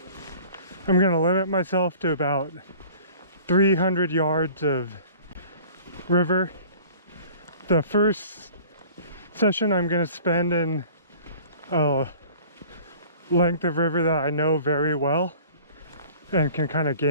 I'm going to limit myself to about 300 yards of river. The first session I'm going to spend in a length of river that I know very well and can kind of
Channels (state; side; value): inverted; both; correlation -0.47